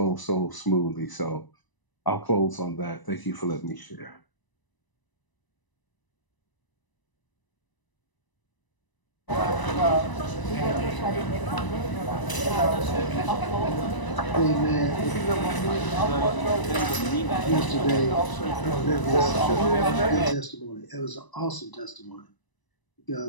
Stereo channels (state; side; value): late; right; 1.0 ms